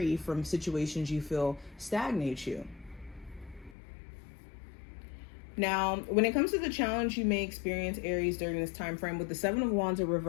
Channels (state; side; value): drops out; right; at 3.8 s